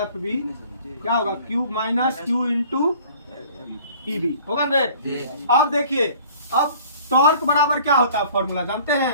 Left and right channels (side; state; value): both; inverted; correlation -0.50